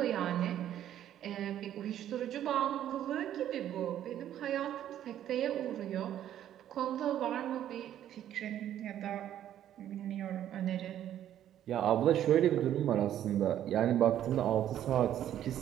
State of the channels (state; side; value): quieter; left; 11.2 dB